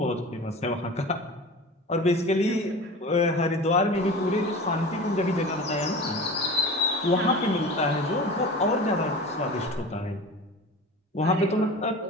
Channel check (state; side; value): normal; both; correlation 0.34